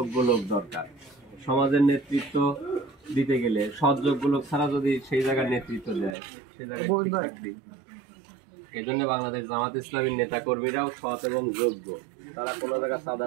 লোক দরকার। সমাজের নেতৃত্ব দিতে গেলে সৎ যোগ্য লোক ছাড়া যদি সেই জায়গার নেতৃত্ব দেয় সেই জায়গায় ঠিক থাকবে। এই জন্য বাংলাদেশ জামাত ইসলামীর নেতা কর্মীরাও সৎ এবং যোগ্য। তারা কোনো জায়গায়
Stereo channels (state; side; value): drops out; left; at 6.2 s